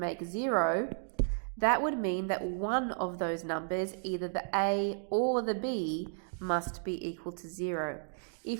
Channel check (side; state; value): left; silent; digital silence